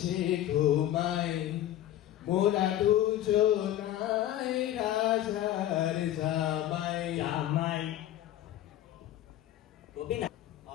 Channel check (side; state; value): right; quieter; 12.7 dB